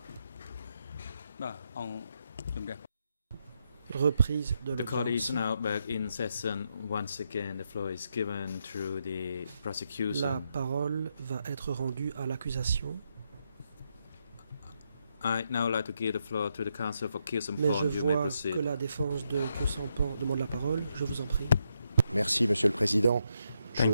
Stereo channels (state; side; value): inverted; both; correlation -0.80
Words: Reprise de The court is l'audience. now back in session. Once again, the floor is given to the La prosecution. parole va être rendue à l'accusation. I'd now like to give the floor to the counsel for Mais je Kyusampon. You may vois proceed. que la défense de Kyusampon demande la parole. Je vous en prie. Merci, Monsieur le Président. Thank